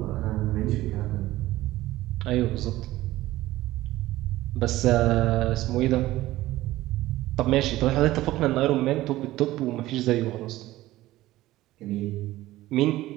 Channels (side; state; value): left; quieter; 16.4 dB